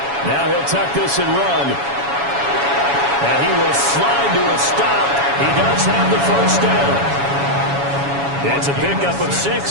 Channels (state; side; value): late; left; 7.2 ms